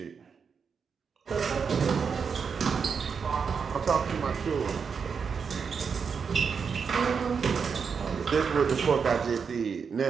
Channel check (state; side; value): quieter; left; 6.0 dB